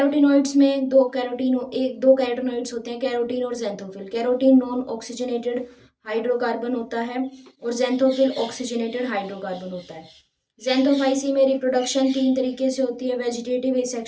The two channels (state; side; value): identical; both; correlation 1.00